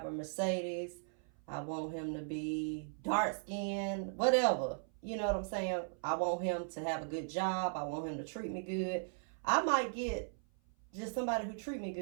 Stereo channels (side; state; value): left; silent; 53 dB below the other